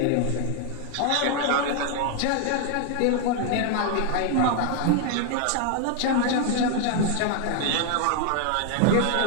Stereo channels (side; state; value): both; different; correlation 0.00